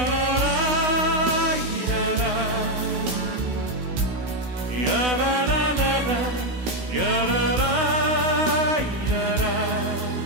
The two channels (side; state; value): left; late; 16 ms